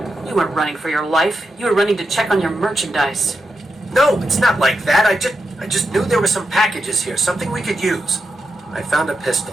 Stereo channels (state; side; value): normal; both; correlation 0.87